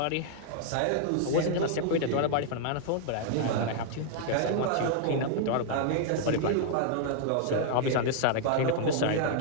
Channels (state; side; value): different; both; correlation 0.00